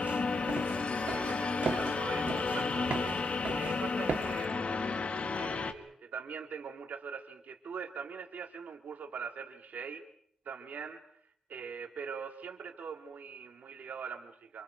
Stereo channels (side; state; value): both; normal; correlation 0.78